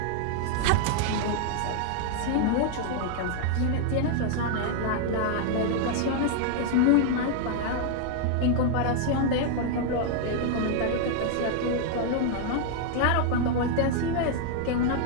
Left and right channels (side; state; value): both; different; correlation 0.00